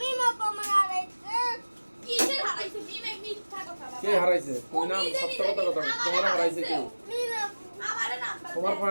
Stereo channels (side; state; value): both; inverted; correlation -1.00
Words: পামা আড়াইছে কিসের হারাইছে মিমে মিথ্যা কথা বাবা কে হারাইছে তুই না সত্য কথা কথা তোমার হারাইছে কে মিমা আমারে নাম তোমার